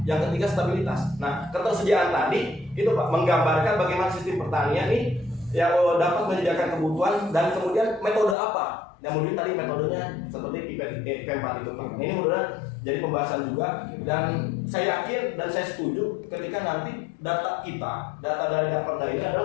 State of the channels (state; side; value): drops out; right; at 8.3 s